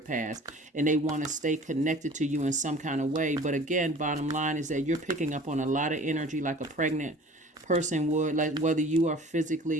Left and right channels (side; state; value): both; normal; correlation 0.46